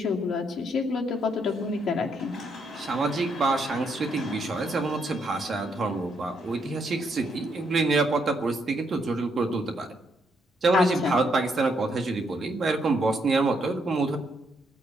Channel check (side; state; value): both; normal; correlation 0.75